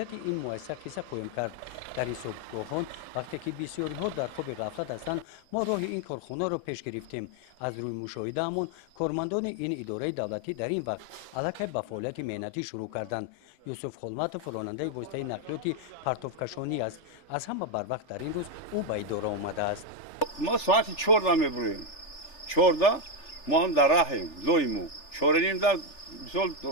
این مؤسسه قصه خواهیم کرد. در این صبحگاهان وقتی که بسیاری ها در خواب غفلت هستند، ما راه این کارخانه را پیش گرفتیم. از روی مشاهده همون کارمندان این اداره دولتی در این وقت علاقه به فعالیت مهنتی شروع کردند. یوسف خلمت راننده واسطه نقلیات پرتوکشانی است. از همه بر وقت در این روز او به اداره آمده است. ما ساعت 14 میبریم. 14 ما هم در راهیم. لویمو. 4:30 در مثال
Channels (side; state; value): right; late; 3.4 ms